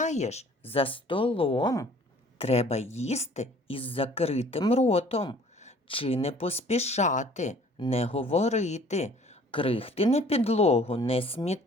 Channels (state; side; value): normal; both; correlation 0.53